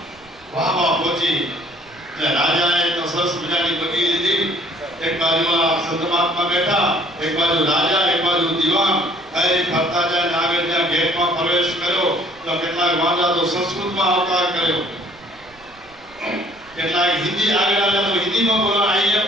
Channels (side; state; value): right; noise; rumble, 28 dB below the sound